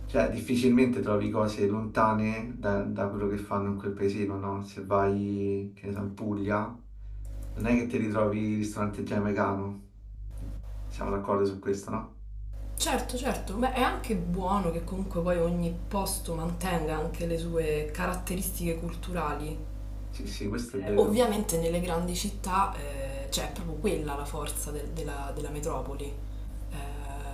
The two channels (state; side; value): identical; both; correlation 1.00